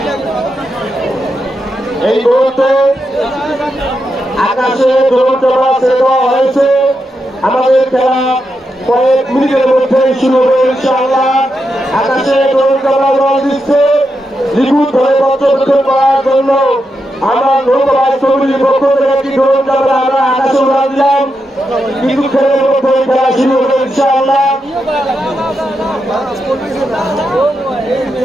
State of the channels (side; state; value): both; normal; correlation 0.85